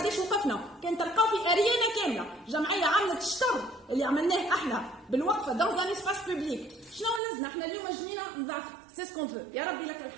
وقفنا. كان تلقاو في اريانا كامله جمعيه عملت الشطر اللي عملناه احنا بالوقفه دون ان اسباس بوبليك. شنو لازمنا احنا اليوم جنينا نضعف سي سكون فو يا ربي لك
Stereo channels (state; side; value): drops out; left; at 7.2 s